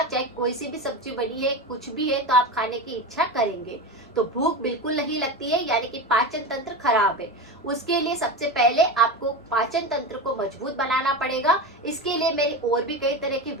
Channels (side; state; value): both; normal; correlation 0.23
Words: चाहे कोई सी भी सब्जी बनी है, कुछ भी है, तो आप खाने की इच्छा करेंगे। तो भूख बिल्कुल नहीं लगती है, यानी कि पाचन तंत्र खराब है। उसके लिए सबसे पहले आपको पाचन तंत्र को मजबूत बनाना पड़ेगा। इसके लिए मेरी और भी कई तरह की